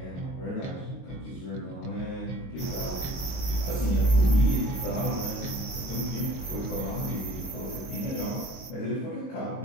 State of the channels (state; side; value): late; right; 22 ms